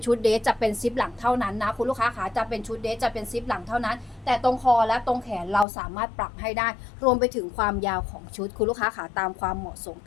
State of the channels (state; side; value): drops out; right; at 5.7 s